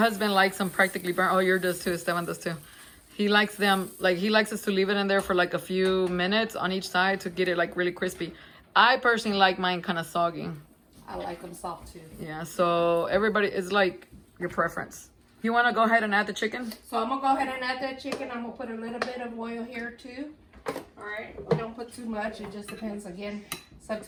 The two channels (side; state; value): both; identical; correlation 1.00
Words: likes them practically burnt. Oh, yours does too. Esteban does too. He likes them, like, he likes us to leave it in there for like a few minutes on each side to get it like really crispy. I personally like mine kind of soggy. I like them soft too. Yeah, so everybody is like your preference. You want to go ahead and add the chicken? So I'm gonna go ahead and add that chicken. I'm gonna put a little bit of oil here too. All right, we don't put too much. It just depends. Again, it's up